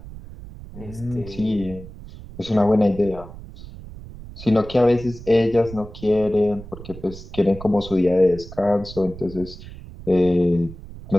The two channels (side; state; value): right; noise; rumble, 15 dB below the sound